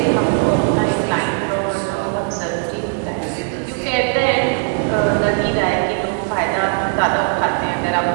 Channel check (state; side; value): silent; left; 56 dB below the other